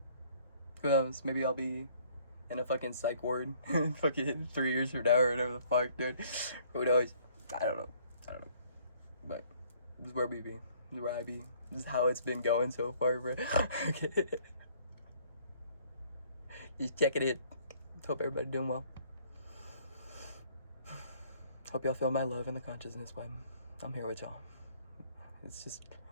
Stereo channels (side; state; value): both; inverted; correlation -0.60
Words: Who knows? Maybe I'll be in a fucking psych ward fucking 3 years from now or whatever the fuck, dude. Who knows? I don't know. But this is where we be. This is where I be. This is how it's been going so far, bro. Okay. Just checking it. Hope everybody doing well. Hope y'all feel my love in the consciousness when I'm here with y'all. It's just,